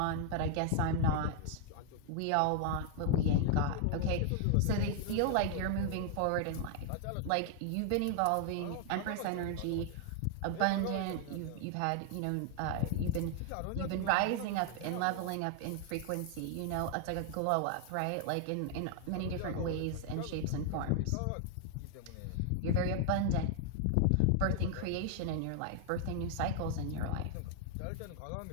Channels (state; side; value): different; both; correlation 0.00